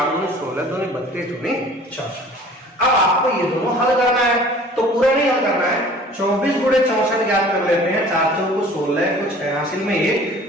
2 दूनी 16, 2 दूनी 32, 2 दूनी 64। अब आपको ये दोनों हल करना है, तो पूरा नहीं हल करना है, 24 गुणे 64 याद कर लेते हैं। 4 चौको 16, कुछ है हासिल में 1,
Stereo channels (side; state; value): both; normal; correlation 0.48